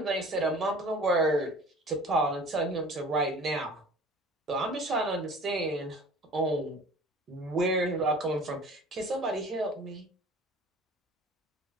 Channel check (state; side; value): normal; both; correlation 0.45